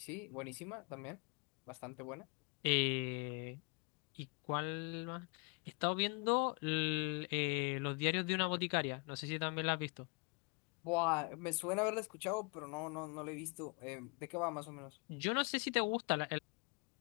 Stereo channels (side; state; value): right; quieter; 32.8 dB